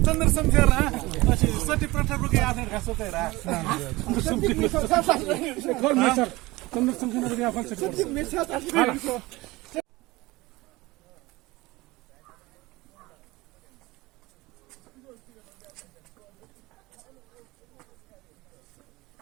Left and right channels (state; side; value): quieter; left; 20.8 dB